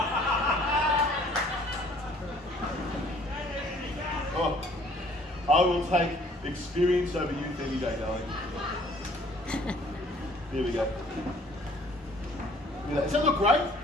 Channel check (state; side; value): normal; both; correlation 0.57